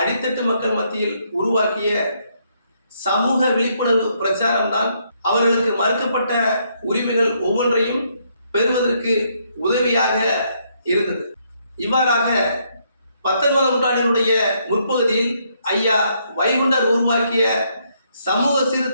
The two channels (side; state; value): both; inverted; correlation -0.73